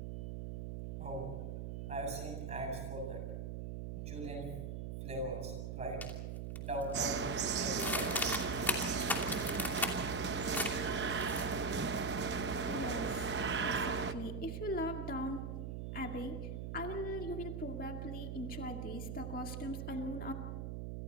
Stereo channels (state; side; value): noise; right; hum, 4 dB below the sound